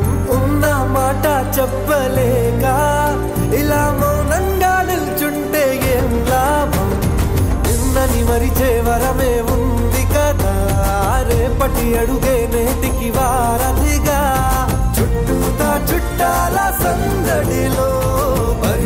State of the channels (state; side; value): identical; both; correlation 1.00